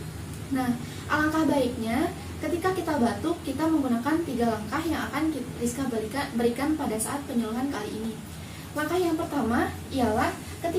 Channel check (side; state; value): both; identical; correlation 1.00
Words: Nah, alangkah baiknya ketika kita batuk, kita menggunakan 3 langkah yang akan Rizka berikan pada saat penyuluhan kali ini. Langkah yang pertama ialah